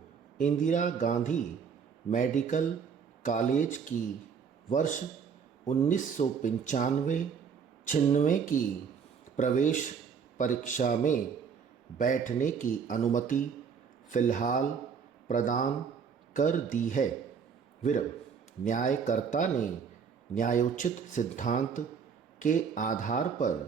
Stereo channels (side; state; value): left; quieter; 6.5 dB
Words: इंदिरा गांधी मेडिकल कॉलेज की वर्ष 1995-96 की प्रवेश परीक्षा में बैठने की अनुमति फ़िलहाल प्रदान कर दी है। न्यायकर्ता ने न्यायोचित सिद्धांत के आधार